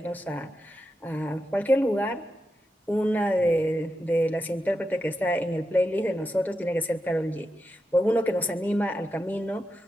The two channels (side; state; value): both; normal; correlation 0.88